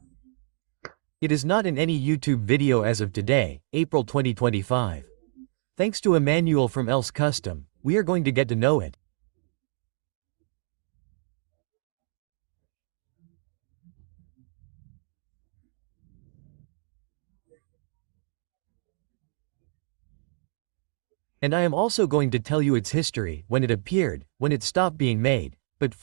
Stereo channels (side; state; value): left; silent; digital silence